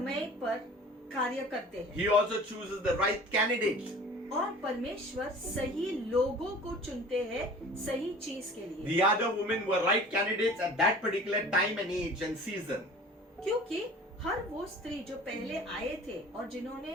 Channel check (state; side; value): normal; both; correlation 0.44